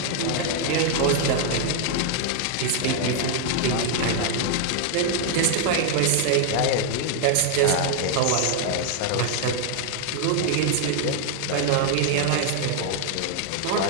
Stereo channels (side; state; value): both; different; correlation 0.00